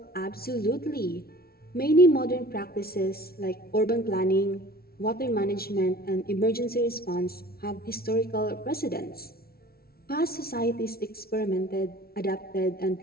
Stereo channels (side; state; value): right; late; 0.44 ms